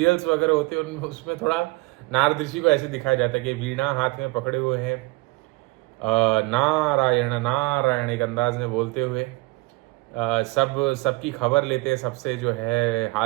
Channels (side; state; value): left; quieter; 23.8 dB